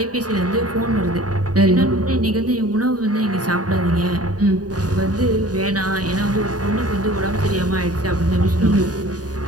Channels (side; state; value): left; late; 0.68 ms